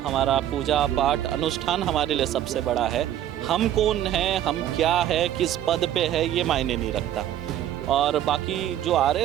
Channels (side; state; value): left; quieter; 11.6 dB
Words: हमारा पूजा पाठ अनुष्ठान हमारे लिए सबसे बड़ा है। हम कौन हैं, हम क्या है, किस पद पे है, ये मायने नहीं रखता। और बाकी जो आ